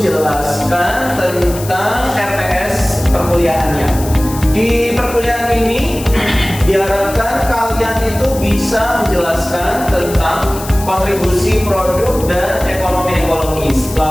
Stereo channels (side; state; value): left; noise; hiss, 13 dB below the sound